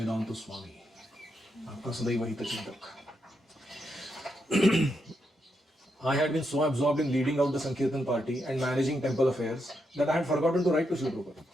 स्वामी, आपका सदैव हितचिंतक। I had been so absorbed in leading out the Sankirtan party and managing temple affairs that I had forgotten to write to Srila Prabhupada.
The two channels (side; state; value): both; normal; correlation 0.82